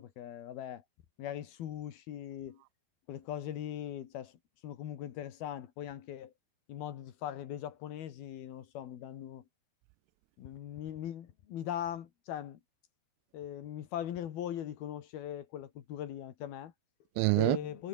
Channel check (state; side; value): late; right; 12 ms